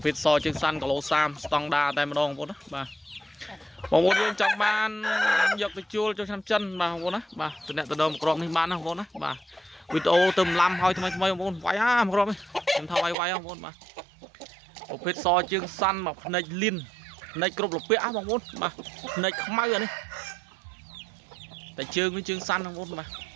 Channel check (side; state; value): left; drops out; at 13.2 s